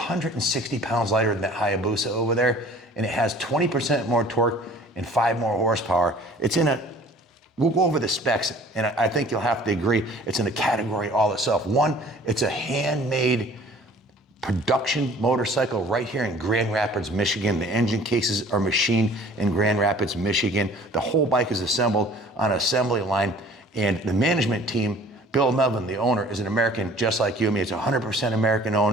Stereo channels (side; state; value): both; normal; correlation 0.50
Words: pounds lighter than that Hayabusa over there. And it has 20% more torque and 5 more horsepower. It's in a, we'll go over the specs, and I think you'll have to agree, it's in a category all itself. One, it's a handmade production motorcycle right here in Grand Rapids, Michigan. The engine cases are machined in Grand Rapids, Michigan. The whole bike is assembled on an assembly line, and the management team, Bill Melvin, the owner, is an American just like you and me. It's 100% American